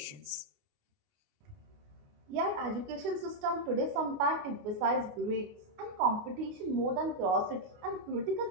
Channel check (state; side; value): late; left; 28 ms